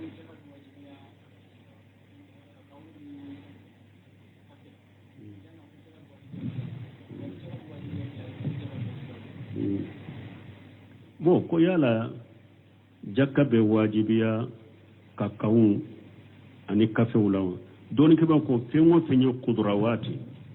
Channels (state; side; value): identical; both; correlation 1.00